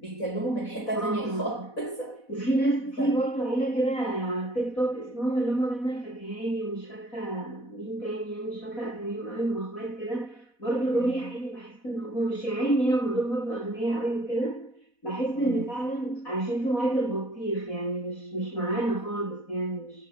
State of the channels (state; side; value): late; right; 4.1 ms